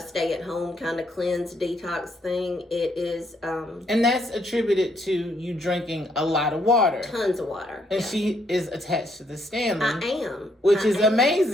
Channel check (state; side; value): normal; both; correlation 0.72